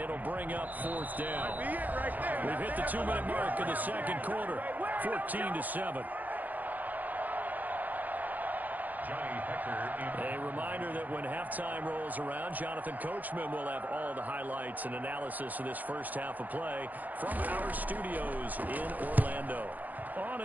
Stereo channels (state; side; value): late; left; 0.082 ms